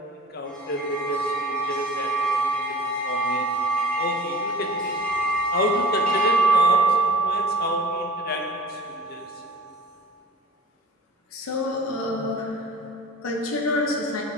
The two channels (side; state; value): both; normal; correlation 0.42